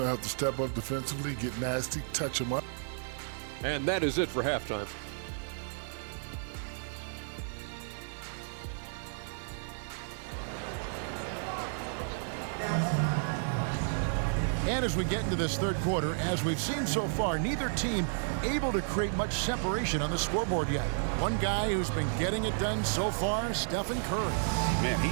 have to step up defensively, get nasty, touch them up. And that is it for halftime. And as we get into this third quarter, as we've seen so far, neither team able to create much separation on the scoreboard yet. One guy who's been getting it done so far, Stephen Curry. Man,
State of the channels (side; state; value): left; silent; digital silence